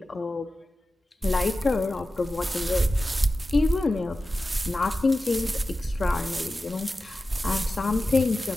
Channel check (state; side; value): normal; both; correlation 0.94